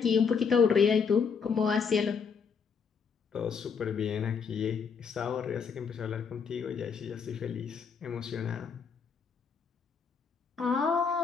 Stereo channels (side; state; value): right; quieter; 6.1 dB